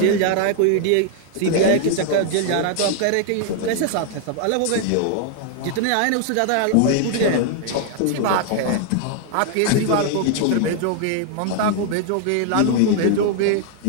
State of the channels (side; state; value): both; different; correlation 0.00